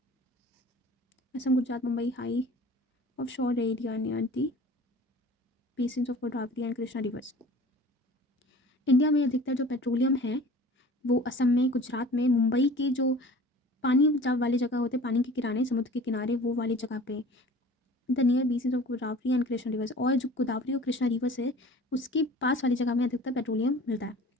Assam Gujarat Mumbai high offshore area near the basins of Godavari and Krishna rivers. India में अधिकतर जो पेट्रोलियम है वो असम में, गुजरात में, मुंबई के जो पानी वाले जगह होते हैं, पानी के किनारे, समुद्र के किनारे, वो वाली जगह पे, the near basins of Godavari and Krishna reverse, और जो गोदावरी और कृष्णा रिवर्स है उसके पास वाली जगह में अधिकतर पेट्रोलियम मिलता है।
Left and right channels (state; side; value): normal; both; correlation 0.44